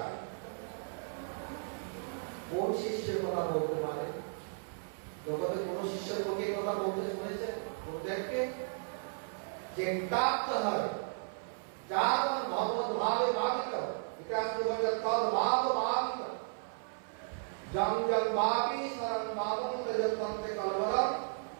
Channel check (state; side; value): silent; left; 55 dB below the other